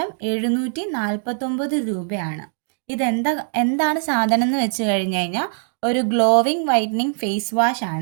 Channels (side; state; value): left; silent; digital silence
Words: 749 രൂപയാണ്. എന്താണ് സാധനം എന്ന് വെച്ച് കഴിഞ്ഞ് കഴിഞ്ഞാൽ ഒരു ഗ്ലോവിങ് വൈറ്റനിങ് ഫേസ് വാഷ്